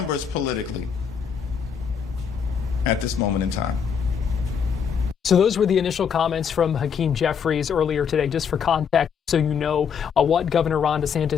politically at this moment in time. So those were the initial comments from Hakeem Jeffries earlier today, just for context, so you know what Governor Ron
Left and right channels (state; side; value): quieter; right; 7.1 dB